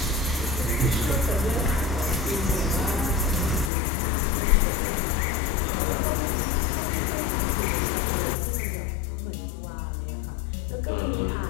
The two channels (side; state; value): right; drops out; at 3.7 s